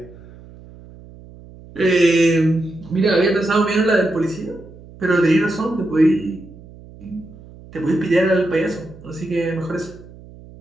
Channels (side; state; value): right; noise; hum, 20 dB below the sound